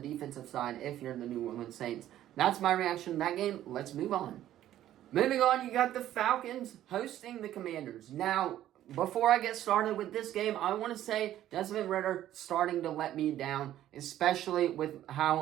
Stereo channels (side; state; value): left; quieter; 12.6 dB